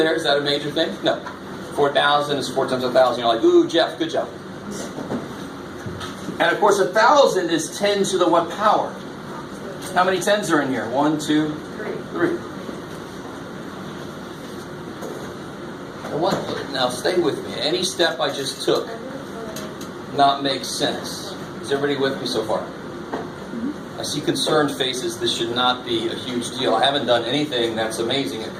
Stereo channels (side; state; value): both; identical; correlation 1.00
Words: Is that a major thing? No. 4,000 is 4 times 1,000. You're like, ooh, Jeff, good job. And of course, 1,000 is 10 to the what power? How many tens are in here? 1, 2, 3. Now stay with me. Any step I just took not make sense. Is everybody with me so far? I see concerned faces. This should not be a huge deal. I haven't done anything that's amazing up